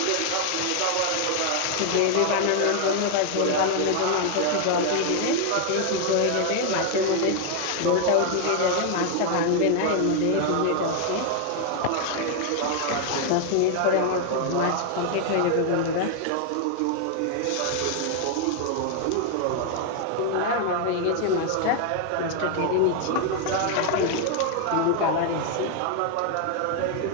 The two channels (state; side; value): different; both; correlation 0.00